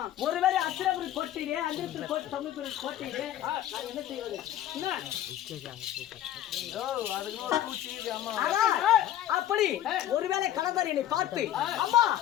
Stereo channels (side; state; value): right; quieter; 12.2 dB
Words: ஒருவேளை அஸ்தினாபுரம் கோட்டையிலே அந்திரத்தில் கோட்டையிலே நான் என்ன செய்வது? அப்படி ஒருவேளை கலந்தாரியை பார்த்து அம்மா